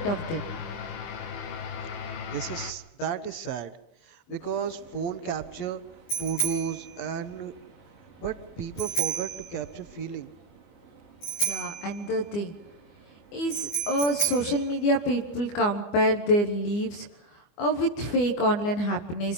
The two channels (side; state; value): right; late; 24 ms